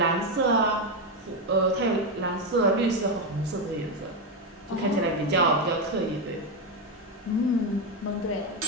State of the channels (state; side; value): normal; both; correlation 0.08